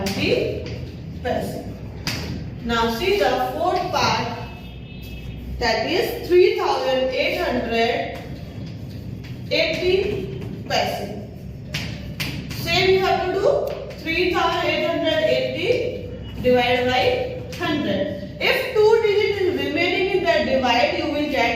paise. Now see the fourth part, that is 3880 paise. Same you have to do 3880 divided by 100. If 2 digits is remaining in the divide, you will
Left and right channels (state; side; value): identical; both; correlation 1.00